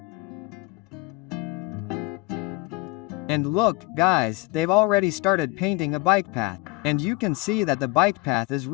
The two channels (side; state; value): right; quieter; 22.2 dB